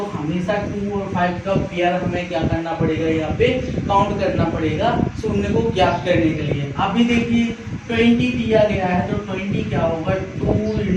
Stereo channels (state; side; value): identical; both; correlation 1.00